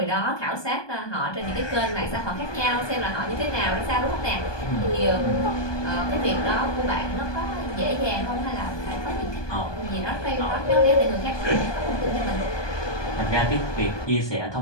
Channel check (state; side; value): late; right; 1.2 ms